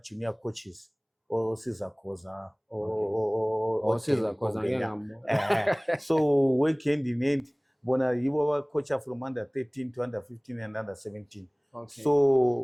junior coaches, or Cesar Koza, or Cesar Koza. So work hand in hand. Bona you were coach from under 13 to under 15 and under 17. Okay.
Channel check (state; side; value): identical; both; correlation 1.00